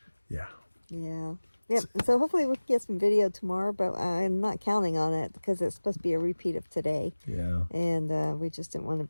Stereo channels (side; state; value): both; inverted; correlation -1.00